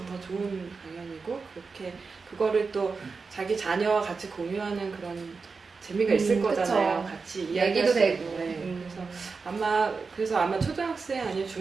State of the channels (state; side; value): quieter; left; 4.7 dB